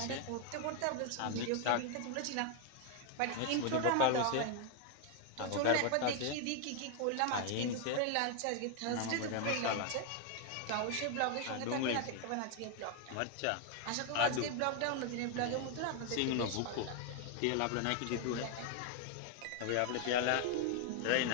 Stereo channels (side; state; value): both; different; correlation 0.00